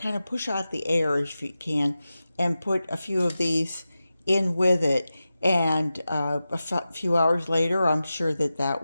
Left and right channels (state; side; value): inverted; both; correlation -0.93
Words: of push out the air if you can, and put a few of these in with it. And few hours later, I'm sure that